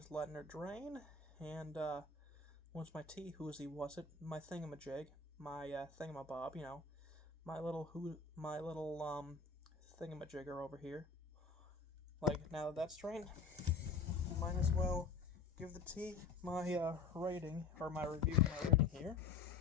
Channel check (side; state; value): right; quieter; 4.7 dB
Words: letting her drain. And, once my tea, my thingamajig, my, thingamabob, my little thingamajigger over here. Now that that's drained, might as well give the tea my, rating, or my review of my rating here.